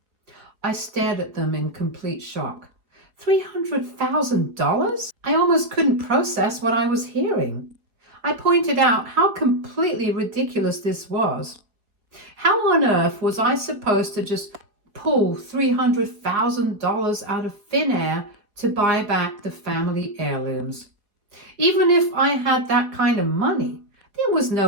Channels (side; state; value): left; late; 4.8 ms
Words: I stared at them in complete shock. $300,000? I almost couldn't process what I was hearing. I pointed out how completely ridiculous this was. How on earth was I supposed to just pull $300,000 out of thin air to buy back the family heirlooms? Even if I had that kind of money, there was